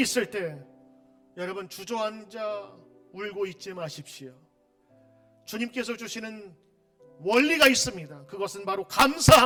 때 여러분 주저앉아 울고 있지 마십시오. 주님께서 주시는 원리가 있습니다. 그것은 바로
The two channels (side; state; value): both; identical; correlation 1.00